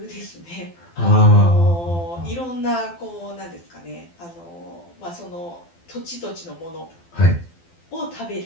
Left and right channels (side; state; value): right; late; 12 ms